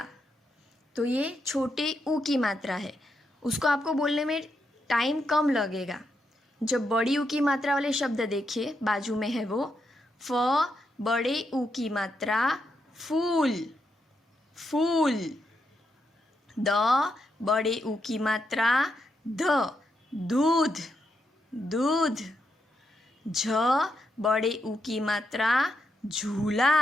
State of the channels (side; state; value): both; normal; correlation 0.82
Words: तो ये छोटे ऊ की मात्रा है, उसको आपको बोलने में टाइम कम लगेगा। जब बड़ी ऊ की मात्रा वाले शब्द देखिए बाजू में है वो, फ बड़े ऊ की मात्रा फूल, फूल। द बड़े ऊ की मात्रा ध, दूध, दूध। झ बड़े ऊ की मात्रा